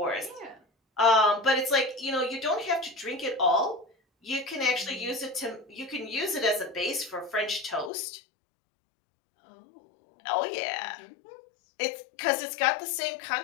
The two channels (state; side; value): drops out; right; at 7.9 s